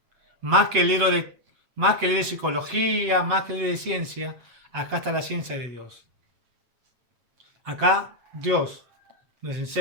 Más que el libro de psicología, más que el libro de ciencia, acá está la ciencia de Dios. Acá Dios nos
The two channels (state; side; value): late; left; 8.2 ms